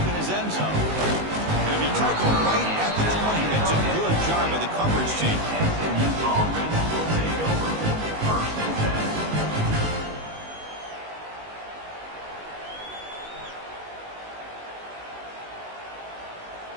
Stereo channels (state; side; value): late; left; 19 ms